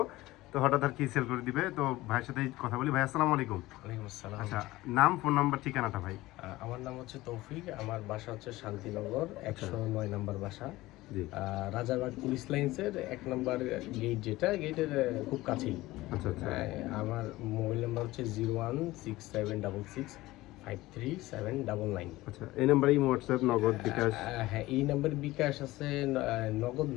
তো হঠাৎ আর কি সেল করে দিবে। তো ভাইয়ের সাথে কথা বলি। ভাই আসসালামু আলাইকুম। ওয়ালাইকুম আসসালাম। আচ্ছা, নাম, ফোন নাম্বার, ঠিকানাটা ভাই। আমার নাম হচ্ছে তৌফিক। আমার বাসা হচ্ছে শান্তিনগর 109 নম্বর বাসা। জি। রাজারবাগ পুলিশ লাইন্সের 1 নম্বর গেট, যেটা গেটের খুব কাছেই। আচ্ছা আচ্ছা আমার মোবাইল নাম্বার হচ্ছে 01676653799। আচ্ছা, এই নাম্বারে হোয়াটসঅ্যাপ, নগদ, বিকাশ? হ্যাঁ, এই নাম্বারে বিকাশ আছে, নগদ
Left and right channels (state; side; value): quieter; right; 18.3 dB